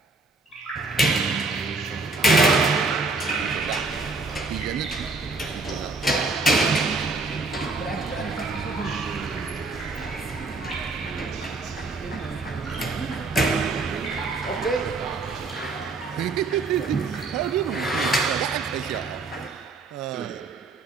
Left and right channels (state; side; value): quieter; left; 3.6 dB